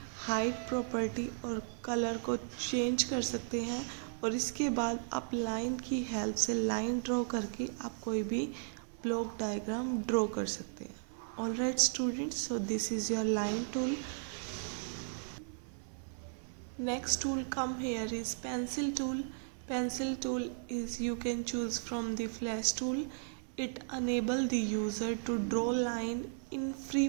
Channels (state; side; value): silent; left; 54 dB below the other